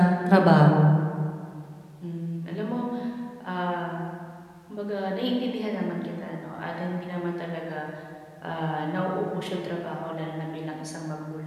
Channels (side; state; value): both; identical; correlation 1.00